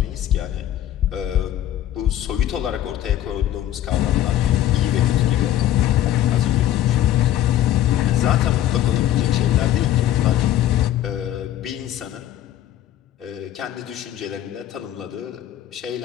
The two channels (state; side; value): quieter; right; 12.2 dB